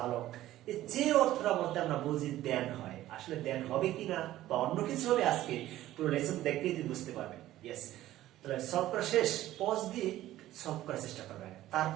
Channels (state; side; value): quieter; left; 14.5 dB